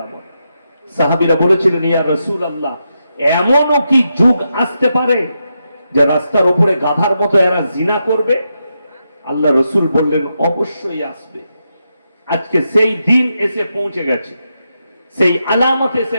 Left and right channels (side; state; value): both; inverted; correlation -0.85